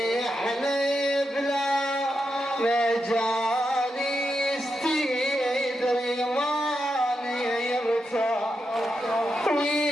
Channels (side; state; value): both; normal; correlation 0.86